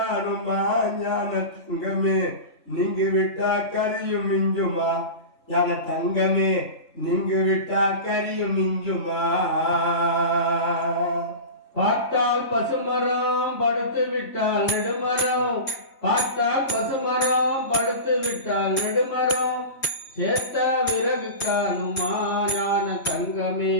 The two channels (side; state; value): right; late; 3.6 ms